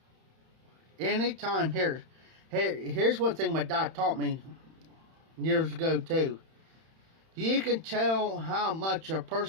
Anytime here's one thing my dad taught me years ago too. You can tell how much a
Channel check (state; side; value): late; left; 31 ms